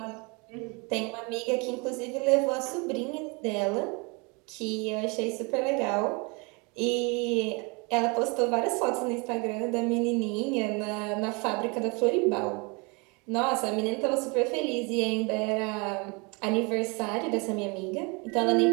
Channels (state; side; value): quieter; left; 30.1 dB